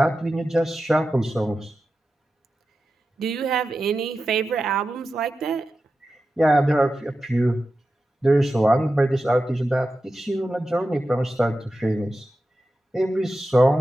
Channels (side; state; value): both; normal; correlation 0.92